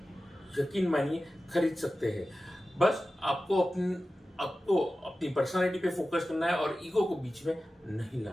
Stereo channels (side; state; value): both; normal; correlation 0.94